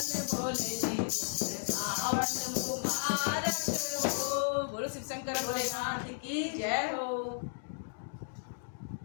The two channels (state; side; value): silent; right; digital silence